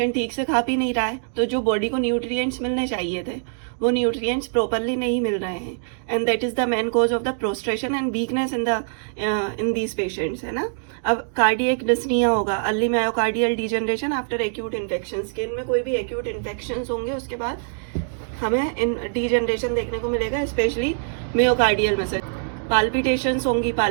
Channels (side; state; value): left; silent; digital silence